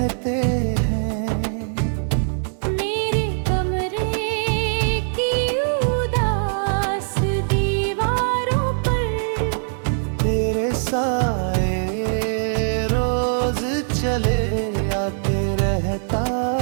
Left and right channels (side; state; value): left; silent; digital silence